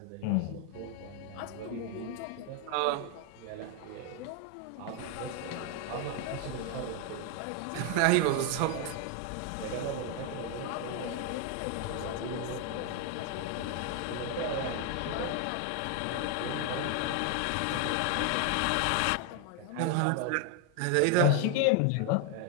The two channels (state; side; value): different; both; correlation 0.01